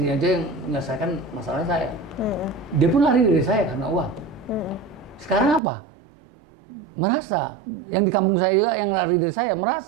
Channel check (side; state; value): left; drops out; at 5.6 s